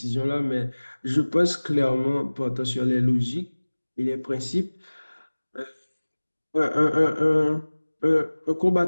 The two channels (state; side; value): inverted; both; correlation -1.00